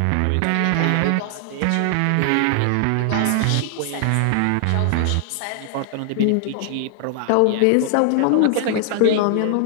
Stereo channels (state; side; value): different; both; correlation 0.00